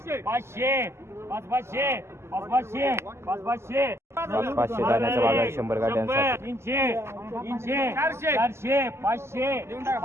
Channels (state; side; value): late; left; 0.13 ms